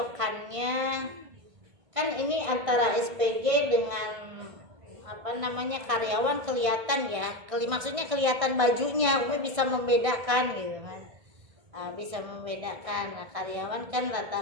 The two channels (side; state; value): left; late; 1.6 ms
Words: kan ini antara SPG dengan karyawan kelihatan ya, maksudnya kelihatan bajunya, Umi bisa membedakan gitu kan. Bisa membedakan. Nah, karyawan kan